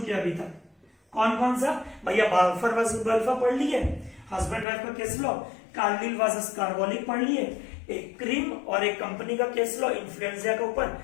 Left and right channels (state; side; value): drops out; right; at 4.7 s